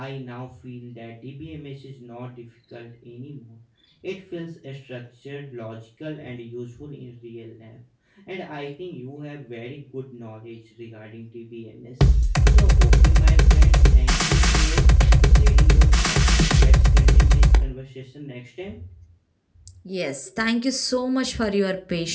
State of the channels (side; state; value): both; identical; correlation 1.00